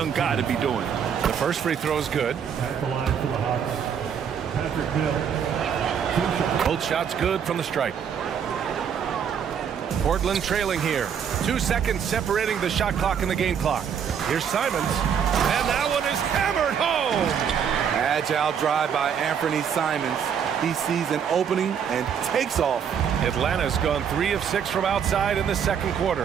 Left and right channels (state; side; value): quieter; left; 7.7 dB